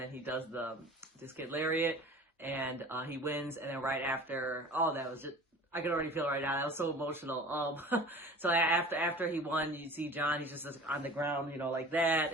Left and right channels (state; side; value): normal; both; correlation 0.41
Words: he does the Discus Lariat, and he wins. And then right after, oh, that was just, I can already feel it right now. That was so emotional. So after he won, you see John, he's just on the ground, you know, like that,